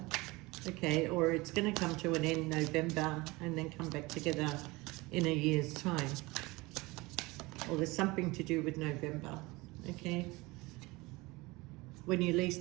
okay, or it's going to come to an end November and then come back together in a year's time. Or there's something to do with November, okay, when you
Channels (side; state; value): left; quieter; 22.7 dB